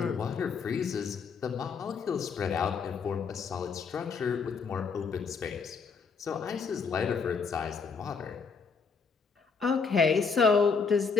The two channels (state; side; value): quieter; right; 5.4 dB